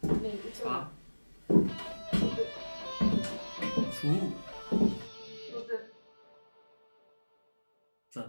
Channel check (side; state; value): both; inverted; correlation -1.00